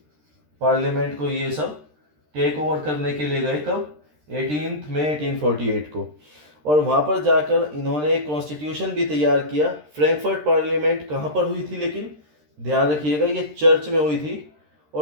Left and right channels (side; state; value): left; late; 13 ms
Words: पार्लियामेंट को ये सब टेक ओवर करने के लिए गए। कब? 18 मई 1848 को। और वहाँ पर जाकर इन्होंने एक कॉन्स्टिट्यूशन भी तैयार किया। फ्रैंकफर्ट पार्लियामेंट कहाँ पर हुई थी? लेकिन ध्यान रखिएगा ये चर्च में हुई थी।